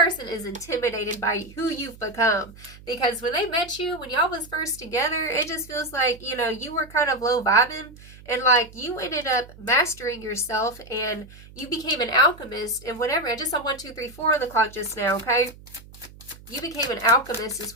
is intimidated by who you've become. Because when they met you, when y'all was first together, it just feels like, you know, you were kind of low vibing. And like you ended up mastering yourself and you became an alchemist and whatever. I just saw 1, 2, 3, 4 on the clock just now, okay? You became an alchemist is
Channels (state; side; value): noise; right; hum, 20 dB below the sound